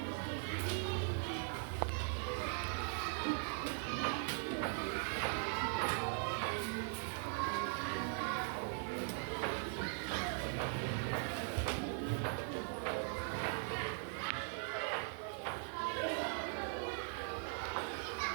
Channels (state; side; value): silent; left; 51 dB below the other